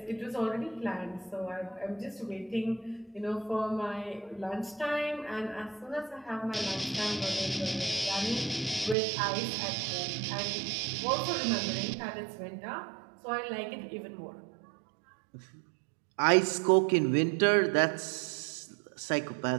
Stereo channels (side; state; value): left; drops out; at 9.0 s